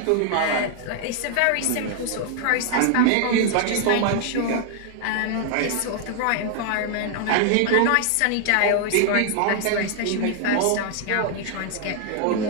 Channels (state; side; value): different; both; correlation 0.00